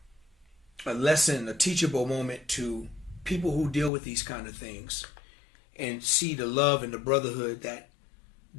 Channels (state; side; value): drops out; right; at 3.9 s